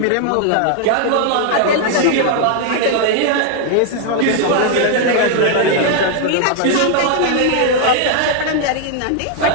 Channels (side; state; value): both; different; correlation 0.00